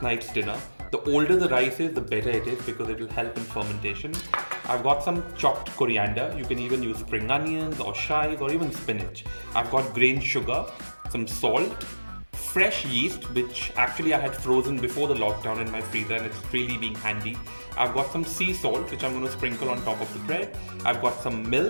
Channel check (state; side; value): inverted; both; correlation -1.00